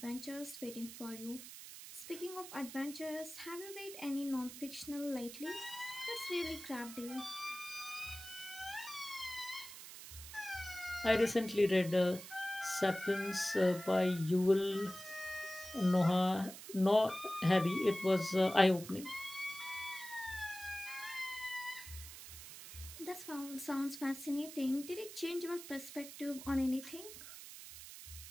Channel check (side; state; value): right; noise; hiss, 13 dB below the sound